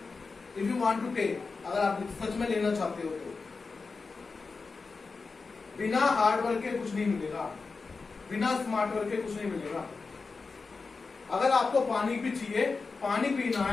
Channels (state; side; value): quieter; right; 4.4 dB